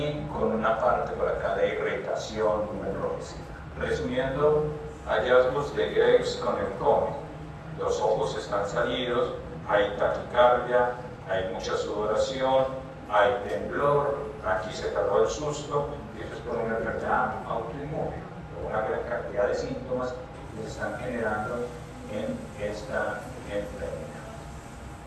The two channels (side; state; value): both; identical; correlation 1.00